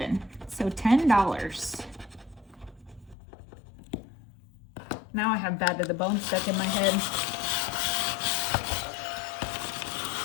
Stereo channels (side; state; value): right; drops out; at 3.2 s